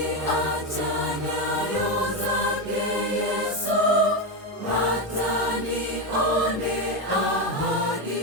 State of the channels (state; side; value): normal; both; correlation 0.11